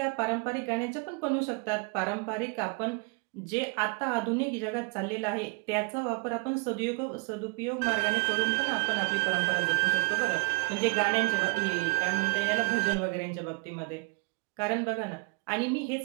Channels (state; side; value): quieter; left; 33.4 dB